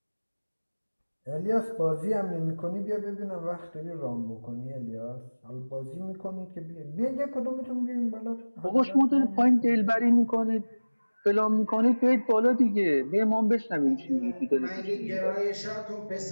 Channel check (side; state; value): both; inverted; correlation -1.00